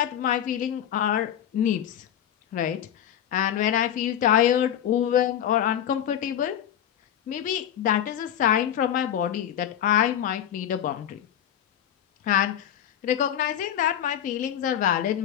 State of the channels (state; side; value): quieter; right; 10.3 dB